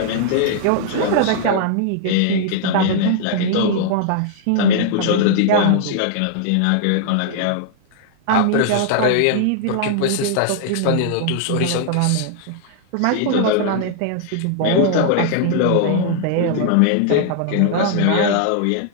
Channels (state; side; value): different; both; correlation -0.01